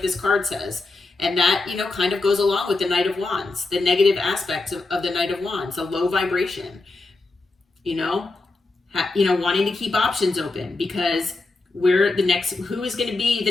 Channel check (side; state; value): right; quieter; 3.3 dB